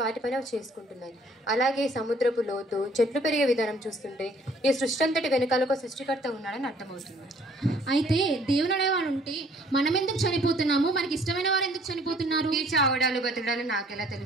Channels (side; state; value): both; normal; correlation 0.59